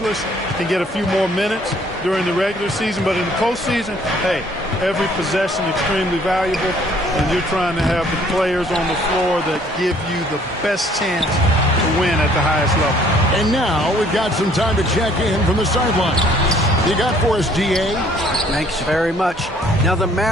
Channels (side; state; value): both; normal; correlation 0.60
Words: can get a few more minutes during the regular season, but in the postseason, hey, every possession extremely valuable, and you're trying to have the players on the floor that give you the best chance to win at the highest level. And now we've got some time to check in from the sideline. You got for us, DA? Thanks very much. Now, the